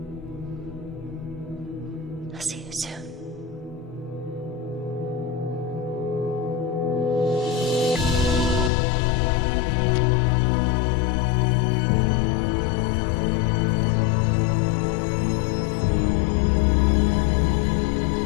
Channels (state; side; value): drops out; right; at 8.7 s